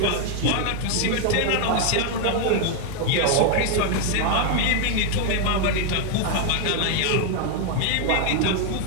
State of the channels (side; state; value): both; different; correlation 0.00